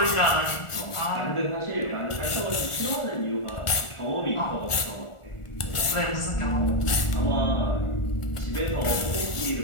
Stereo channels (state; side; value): late; right; 1.4 ms